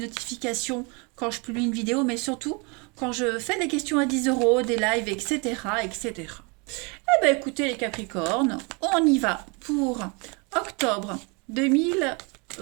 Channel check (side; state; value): left; quieter; 30.9 dB